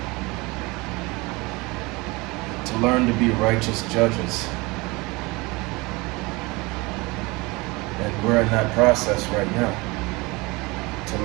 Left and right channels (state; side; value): quieter; left; 24.3 dB